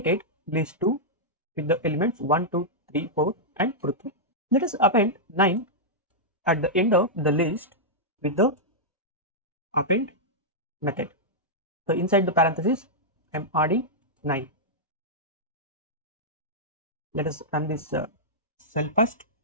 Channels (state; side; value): normal; both; correlation -0.08